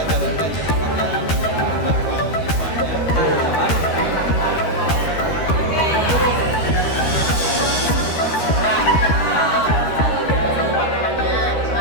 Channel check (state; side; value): late; right; 13 ms